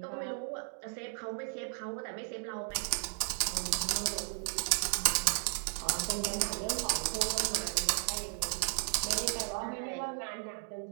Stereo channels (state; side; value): silent; left; 55 dB below the other